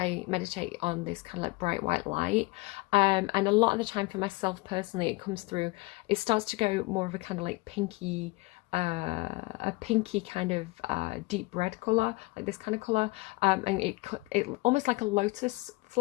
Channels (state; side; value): quieter; right; 23.7 dB